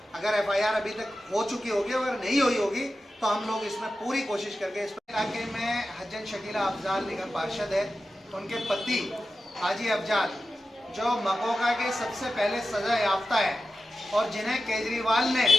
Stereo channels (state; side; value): normal; both; correlation 0.93